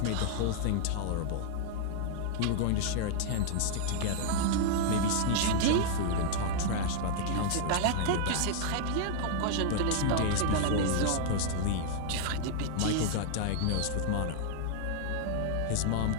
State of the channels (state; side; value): different; both; correlation -0.01